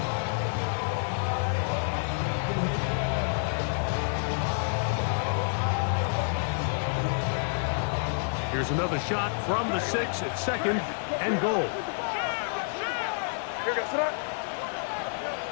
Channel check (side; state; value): right; silent; digital silence